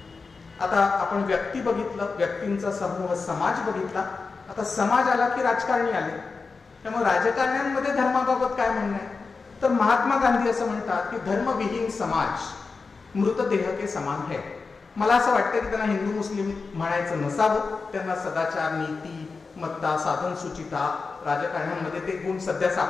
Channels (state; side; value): quieter; right; 4.4 dB